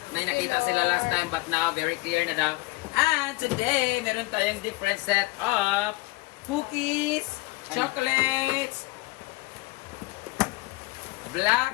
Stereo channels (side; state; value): right; quieter; 22.8 dB